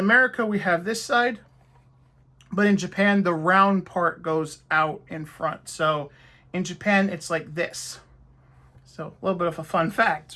we have this side, but in Japan the round part goes out in front. So in Japan it's like this. So a little bit of a fun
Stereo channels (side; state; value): both; identical; correlation 1.00